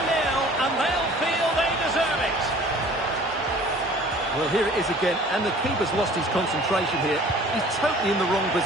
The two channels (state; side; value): normal; both; correlation 0.49